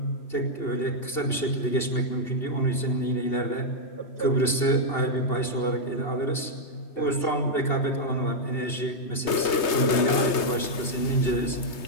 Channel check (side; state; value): right; late; 3.2 ms